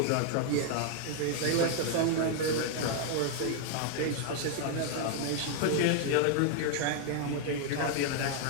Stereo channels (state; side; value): different; both; correlation 0.00